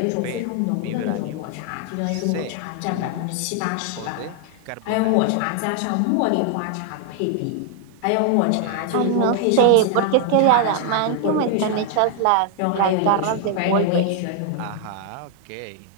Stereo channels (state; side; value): different; both; correlation 0.00